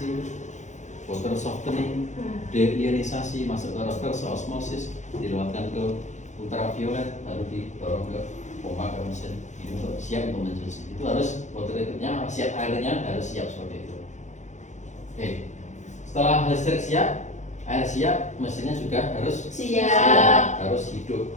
water softening, deionisasi, masuk ke reverse osmosis, dilewatkan ke ultraviolet, lalu didorong ke pompa ke mesin ini untuk siap untuk mencuci. Itu harus water treatmentnya siap, airnya harus siap seperti itu. Oke, setelah listrik siap, air siap, mesinnya juga harus Siap. harus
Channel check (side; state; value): right; late; 0.35 ms